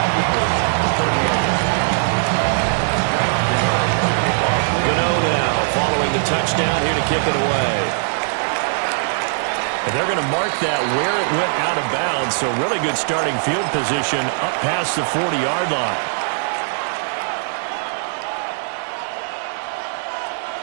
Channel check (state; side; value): silent; left; 66 dB below the other